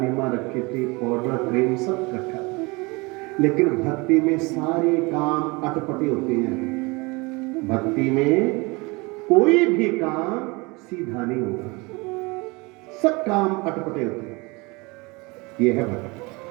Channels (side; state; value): left; quieter; 26.2 dB